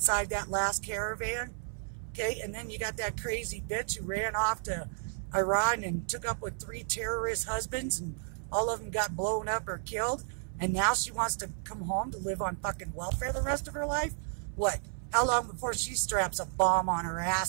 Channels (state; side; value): silent; left; 56 dB below the other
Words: that last caravan. Okay, and then you got that crazy bitch who ran off to Iran and took up with 3 terrorist husbands, and all of them got blown up or killed, and now she wants to come home to live on fucking welfare the rest of her life? What? How long before she straps a bomb on her